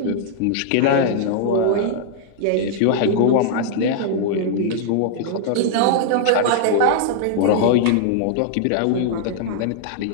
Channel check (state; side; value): different; both; correlation -0.01